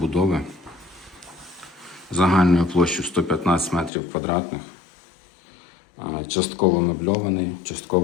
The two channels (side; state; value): right; drops out; at 3.9 s